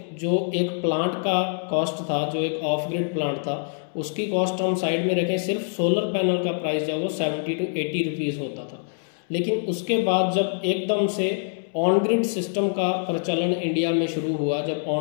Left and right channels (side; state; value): right; silent; 62 dB below the other